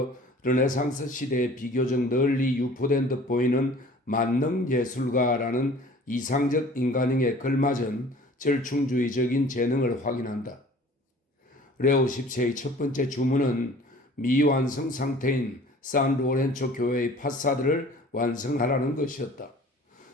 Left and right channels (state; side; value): normal; both; correlation 0.47